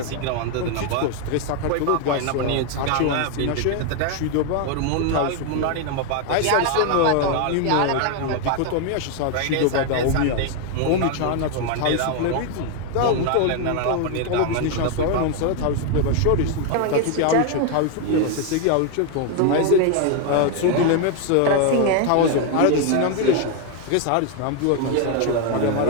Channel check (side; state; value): both; different; correlation 0.01